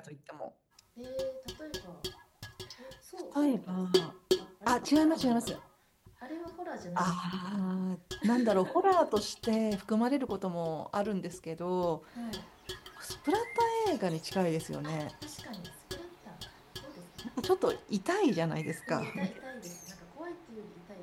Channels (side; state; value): both; identical; correlation 1.00